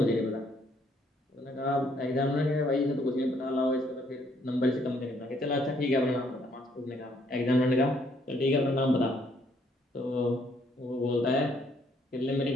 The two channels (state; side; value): normal; both; correlation 0.68